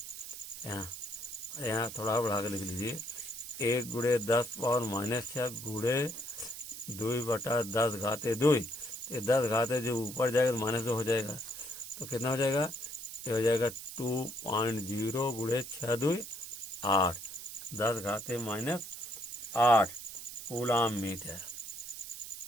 यहाँ थोड़ा बढ़ा के लिख लीजिए 1 × 10⁻⁻6 गुणे 2/10⁻2। ये 10 जो ऊपर जाएगा तो -2 हो जाएगा, तो कितना हो जाएगा, ये हो जाएगा 2.0 × 6 2 8 10⁻⁸ कूलाम मीटर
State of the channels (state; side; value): noise; right; hiss, 10 dB below the sound